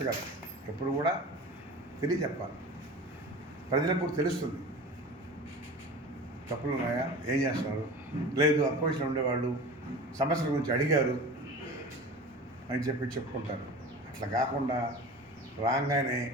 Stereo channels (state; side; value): normal; both; correlation 0.36